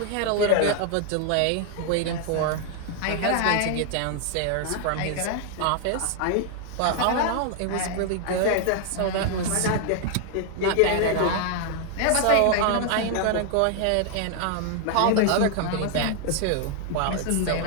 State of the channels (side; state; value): both; different; correlation 0.00